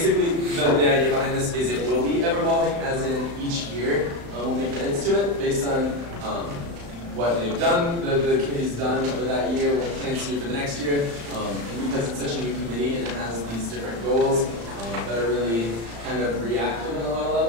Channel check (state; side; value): late; left; 35 ms